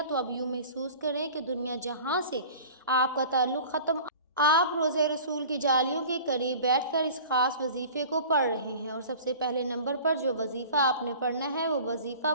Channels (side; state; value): both; inverted; correlation -0.42